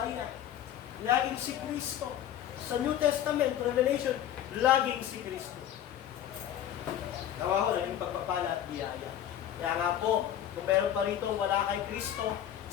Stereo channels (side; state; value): right; quieter; 10.9 dB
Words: laging si Kristo. Sa New Testament, Revelation, laging si Kristo. Gawa ko lang yung pagpapala at biyaya. Kaya nga po, kung meron pa rito wala kay Kristo,